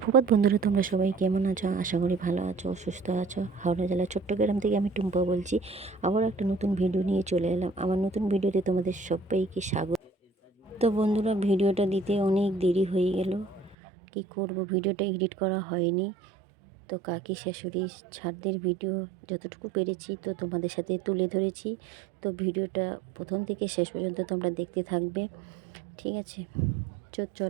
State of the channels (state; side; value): drops out; left; at 13.8 s